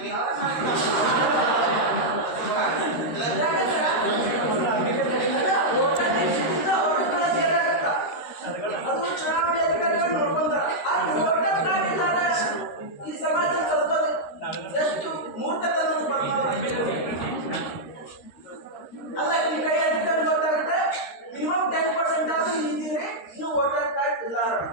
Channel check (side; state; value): right; late; 13 ms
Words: ಅದು ಚುನಾವಣೆ ಅಧಿಕಾರಿಗಳು ನೋಡ್ಕೊಂತಾರ. ಈ ಸಮಾಜ ಕಲ್ಕೋದು ಎಷ್ಟು ಮೂರ್ಖತನ ಅಲ್ಲ. ಈ ಕೈ ಅಧಿಕಾರಿ ಗೊತ್ತಾಗುತ್ತೆ ಮಿನಿಮಮ್ 10% ಆದ್ರೂ ಇದ್ದೀರಿ, ಇನ್ನು ವೋಟರ್ ಕಾರ್ಡ್ ಇಲ್ಲ ಅಂತ.